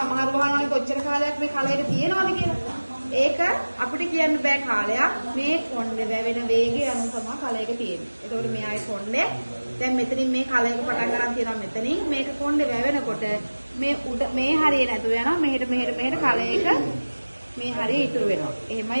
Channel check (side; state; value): both; inverted; correlation -1.00